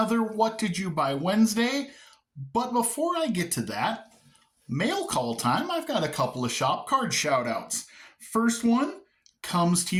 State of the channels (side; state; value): both; identical; correlation 1.00